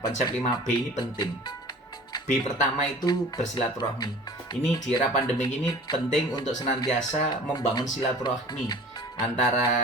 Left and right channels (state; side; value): normal; both; correlation 0.44